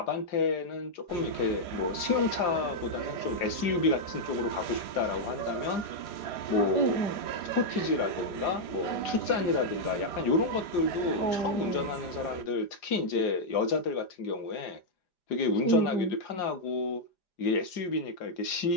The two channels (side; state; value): right; late; 4.9 ms